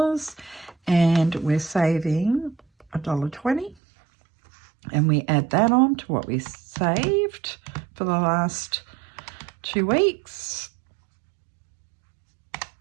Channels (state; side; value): drops out; left; at 3.8 s